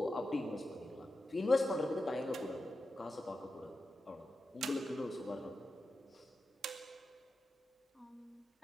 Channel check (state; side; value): normal; both; correlation 0.90